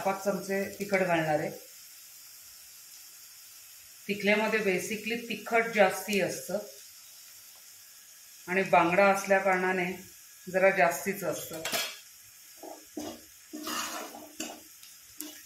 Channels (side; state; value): both; identical; correlation 1.00